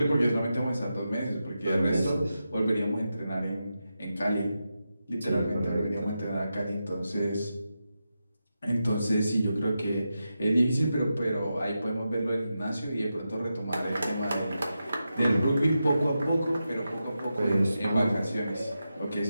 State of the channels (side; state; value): both; inverted; correlation -0.89